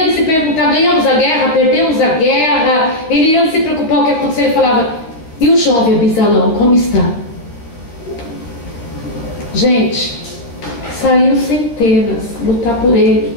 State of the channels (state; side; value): late; right; 13 ms